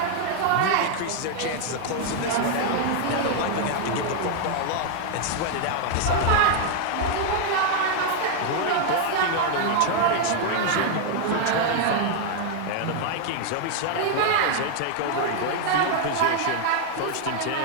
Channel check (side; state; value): both; different; correlation 0.00